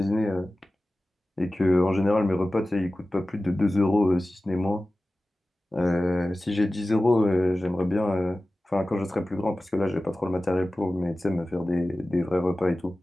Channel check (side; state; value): both; normal; correlation 0.96